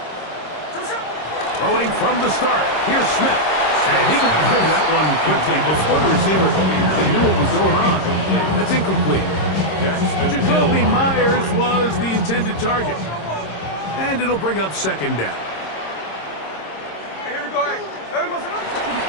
Throwing from the start. Here's Smith. And he got rid of that one quickly before the receiver knew what was going on. That's incomplete. Jacoby Myers was the intended target. And it'll bring up 2nd down. Here we go.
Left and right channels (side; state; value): right; late; 26 ms